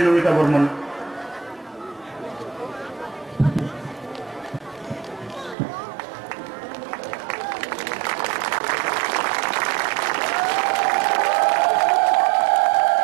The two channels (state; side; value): drops out; left; at 5.6 s